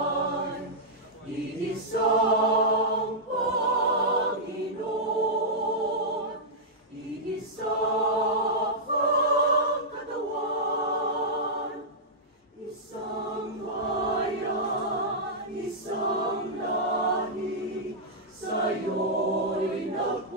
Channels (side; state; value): both; normal; correlation -0.10